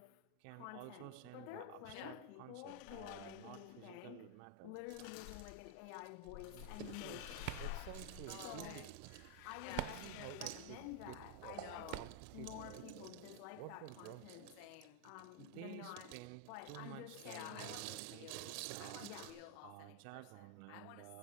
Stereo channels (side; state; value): both; different; correlation 0.01